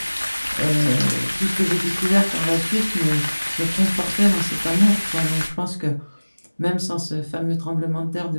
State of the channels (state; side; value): inverted; both; correlation -1.00